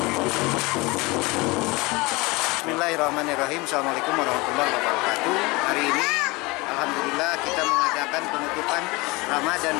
Bismillahirrahmanirrahim. Assalamualaikum warahmatullahi wabarakatuh. Hari ini alhamdulillah kita mengadakan penutupan Ramadan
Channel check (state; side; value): quieter; right; 24.1 dB